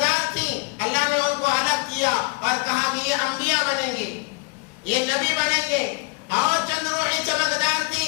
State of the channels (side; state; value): right; quieter; 28.3 dB